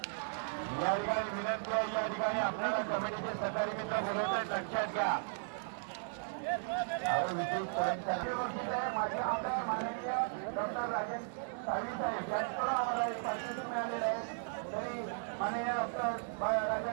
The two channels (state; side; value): silent; left; digital silence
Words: या ठिकाणी विनंती आहे. या ठिकाणी आपल्याला कमिटीचे सहकारी मित्र बोलवत आहेत, लक्षात घ्या. विशेष पॉईंट माझे आमदार माननीय डॉक्टर राजन साळवी साहेब यांच्याकडून आम्हाला एक पारितोषिक मिळालेलं आहे. तरी माननीय डॉक्टर